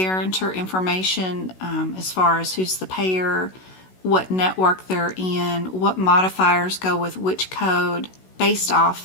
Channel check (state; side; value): late; right; 16 ms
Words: information as far as who's the payer, what network they're in, what modifiers go with which code based